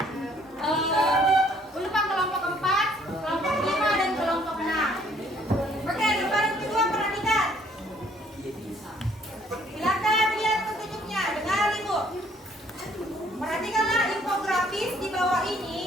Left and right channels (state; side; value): normal; both; correlation 0.62